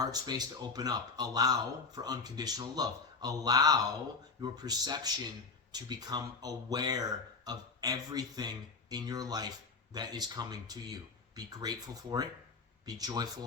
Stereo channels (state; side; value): quieter; right; 4.4 dB